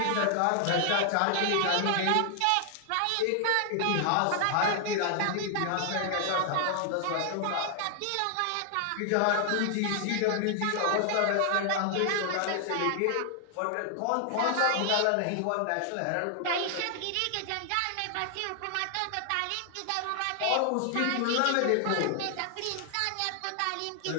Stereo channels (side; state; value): both; different; correlation 0.00